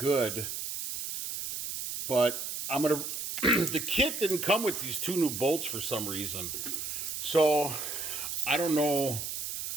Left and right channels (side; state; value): right; noise; hiss, 5 dB below the sound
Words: But I'm going to... The kit didn't come with these 2 new bolts for some reason. So I don't know